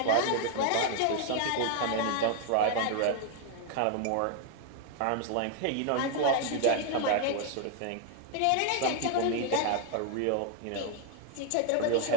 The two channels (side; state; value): both; different; correlation 0.00